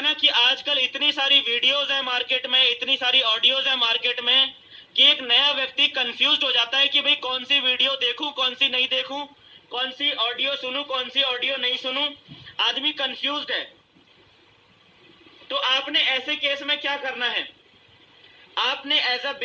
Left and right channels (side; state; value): both; identical; correlation 1.00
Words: ना कि आजकल इतनी सारी वीडियोज है मार्केट में, इतनी सारी ऑडियोज है मार्केट में कि एक नया व्यक्ति कंफ्यूज हो जाता है कि भाई कौन सी वीडियो देखूं, कौन सी नहीं देखूं, कौन सी ऑडियो सुनूं, कौन सी ऑडियो नहीं सुनूं। आदमी कंफ्यूज्ड है। तो आपने ऐसे केस में क्या करना है, आपने एज अ